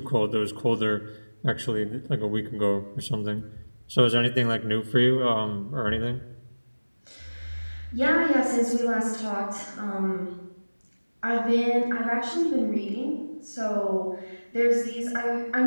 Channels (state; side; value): inverted; both; correlation -1.00